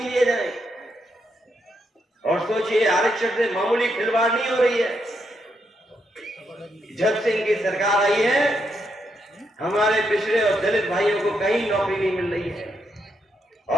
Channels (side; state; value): both; normal; correlation 0.80